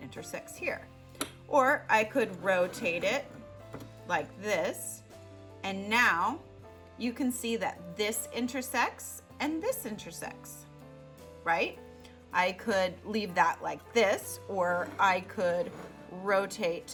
intersects here. Or I could rotate it like this, and now you can see that this intersects and this intersects, right? I could leave that like this, or I could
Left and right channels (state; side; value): identical; both; correlation 1.00